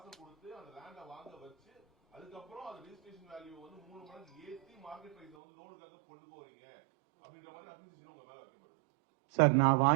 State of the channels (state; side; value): drops out; left; at 5.4 s